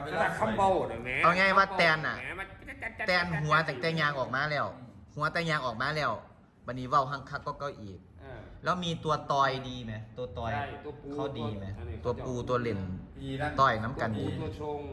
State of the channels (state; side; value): identical; both; correlation 1.00